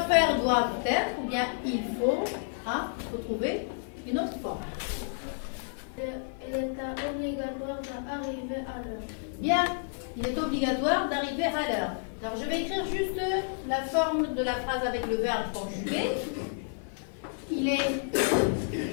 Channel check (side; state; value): right; silent; 58 dB below the other